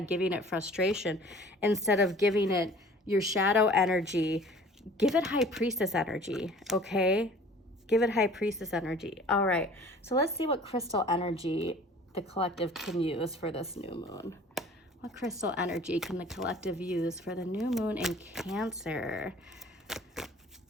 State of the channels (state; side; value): normal; both; correlation 0.48